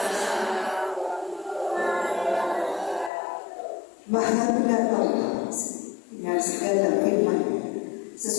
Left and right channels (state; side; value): drops out; right; at 3.1 s